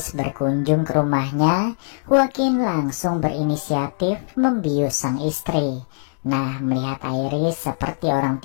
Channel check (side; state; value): right; silent; digital silence